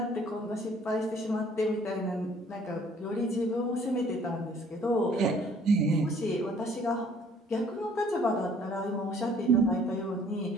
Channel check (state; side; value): normal; both; correlation 0.58